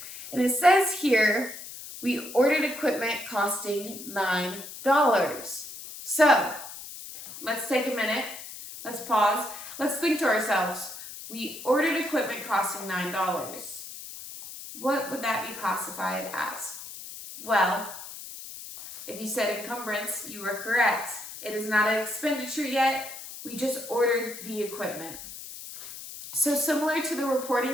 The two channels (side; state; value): left; noise; hiss, 12 dB below the sound